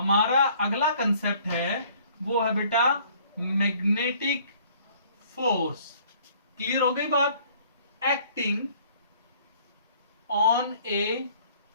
अगला कंसेप्ट है वो है बेटा मैग्नेटिक फोर्स। क्लियर हो गई बात, acting on a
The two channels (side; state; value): both; inverted; correlation -0.57